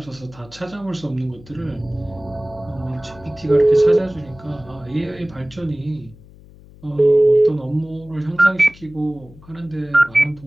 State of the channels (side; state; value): left; noise; hum, 22 dB below the sound